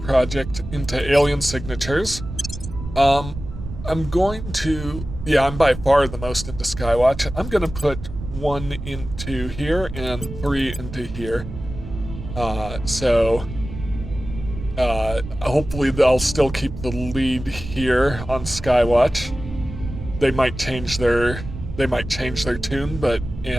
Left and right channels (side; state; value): right; noise; rumble, 10 dB below the sound